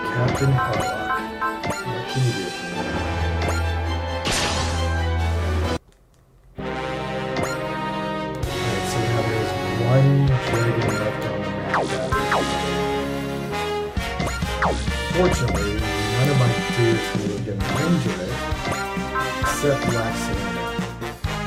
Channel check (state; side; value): identical; both; correlation 1.00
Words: Captain Harlock. What can you do for me? Alright, so now there's one Jeggin left on the map that fortunately, none of my dudes can really get in range of it, except Black Selena.